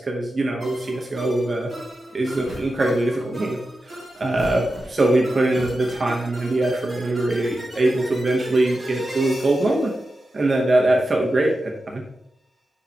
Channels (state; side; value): normal; both; correlation 0.91